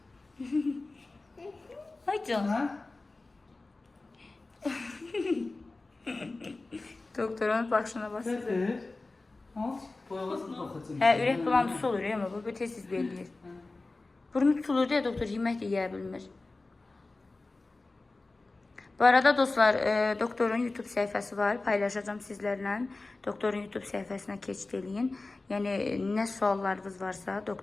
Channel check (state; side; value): quieter; right; 3.3 dB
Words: Ay can. Ha? Doktorun başına basır. Gətir. Al. Boyavasını baxacağım. Hə, ürək bulantısı olur ya, amma bu tez-tez belirləyir. Burnu tutulur deyə doktor yemək də yeyə bilmir. Bu arada dostlar, doktorun YouTube səhifəsi var. Paylaşacağım sizlərlə. Doktorun YouTube səhifəsinə keçid eləyin. Yəni, nə suallarınız varsa,